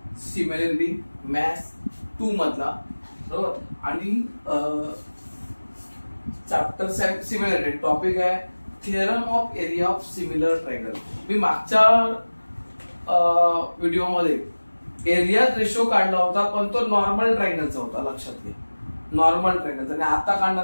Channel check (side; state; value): both; inverted; correlation -1.00